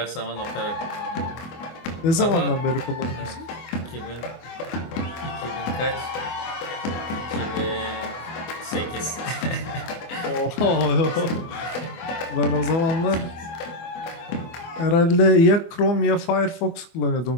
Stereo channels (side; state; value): right; late; 24 ms